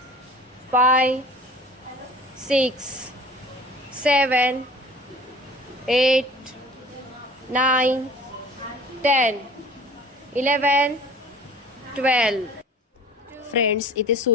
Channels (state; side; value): normal; both; correlation 0.44